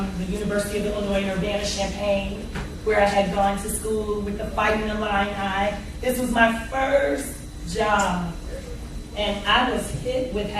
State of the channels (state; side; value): identical; both; correlation 1.00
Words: the University of Illinois in Urbana-Champaign, where I had gone to school with the Fighting Illini. This was my first job, and I was hit with